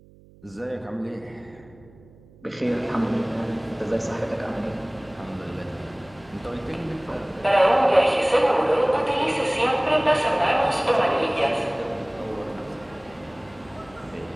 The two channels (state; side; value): noise; right; hum, 25 dB below the sound